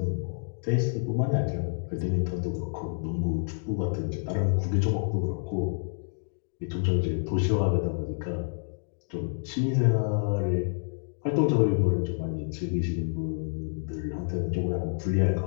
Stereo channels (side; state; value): right; silent; digital silence